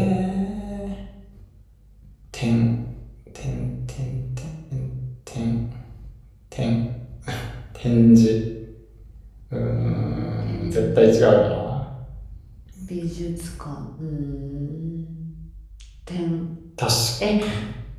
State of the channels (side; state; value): both; identical; correlation 1.00